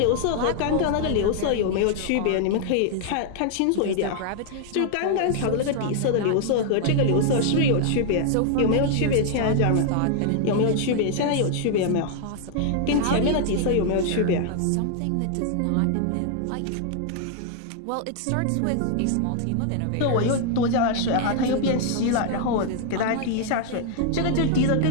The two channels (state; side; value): different; both; correlation 0.00